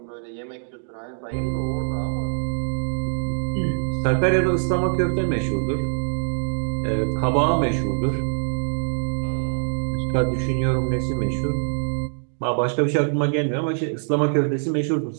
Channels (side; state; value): left; silent; digital silence